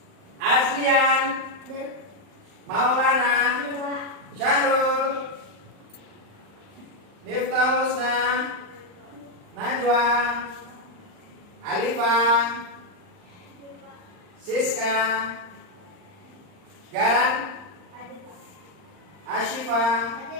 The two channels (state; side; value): late; left; 39 ms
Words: Aslian, Maulana, Syahrul, Miftahusna, Najwa, Alifa, Siska, Garan, Ashifa,